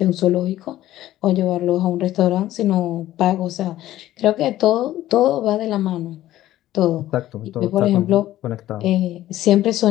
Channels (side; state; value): right; quieter; 14.2 dB